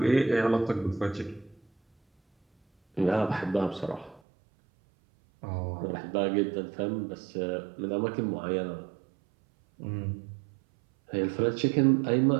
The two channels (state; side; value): drops out; left; at 4.2 s